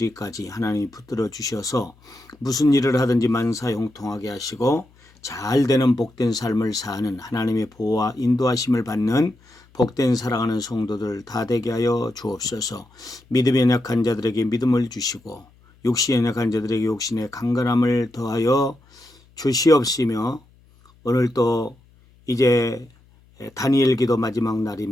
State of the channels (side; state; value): left; noise; hum, 30 dB below the sound